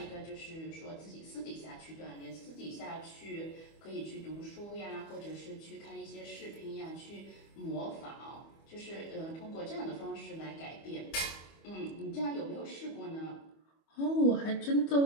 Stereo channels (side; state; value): right; late; 25 ms